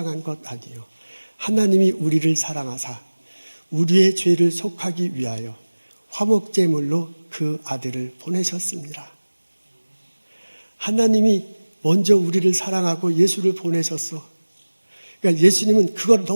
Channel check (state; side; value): inverted; both; correlation -1.00